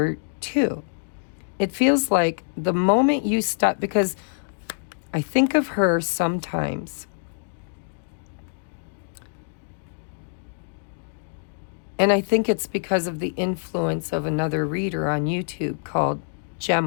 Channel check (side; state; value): right; silent; digital silence